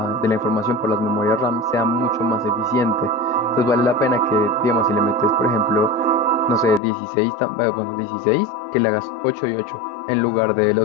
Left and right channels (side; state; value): right; drops out; at 6.8 s